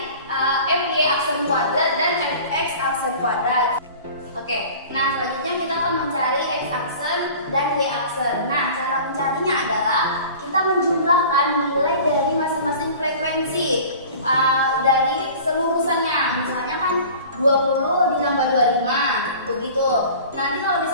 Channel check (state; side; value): inverted; both; correlation -0.42